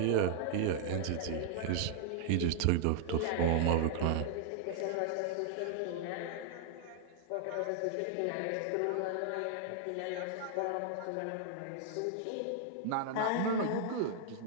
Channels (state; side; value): different; both; correlation 0.00